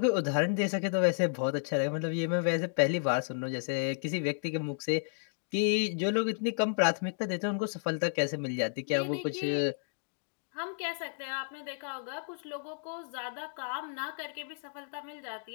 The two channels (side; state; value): right; silent; digital silence